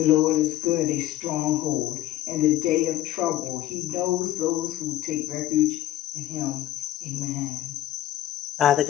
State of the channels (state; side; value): quieter; right; 14.2 dB